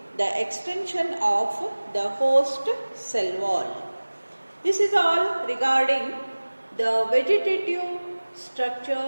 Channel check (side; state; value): both; inverted; correlation -1.00